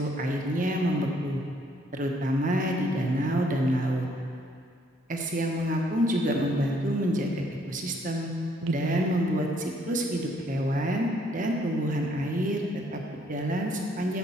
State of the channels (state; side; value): normal; both; correlation 0.67